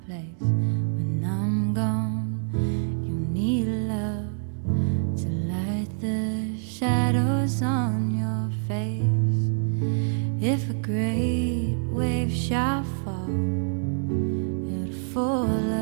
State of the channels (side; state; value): left; silent; digital silence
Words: place when I'm gone. You need love to light the shadows on your face. If a great wave shall fall, it'll fall